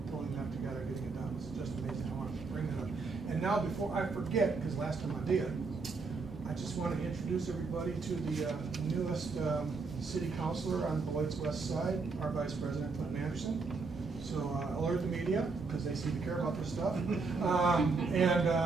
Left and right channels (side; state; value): left; quieter; 4.3 dB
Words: pulling that together, getting it done, was just amazing. I want to bring that up. And now, before I forget, because last time I did, I just want to introduce everybody to the newest city councilor on Beloit's west side, our vice president, Clinton Anderson. So alert the media, because they seem to care about this stuff.